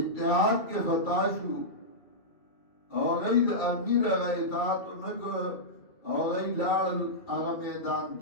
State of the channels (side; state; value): right; late; 2.2 ms